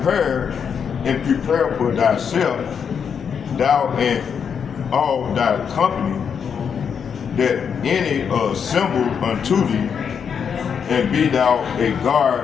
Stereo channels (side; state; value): right; quieter; 7.0 dB